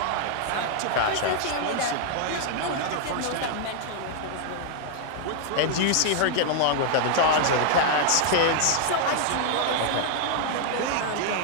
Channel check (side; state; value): both; different; correlation 0.00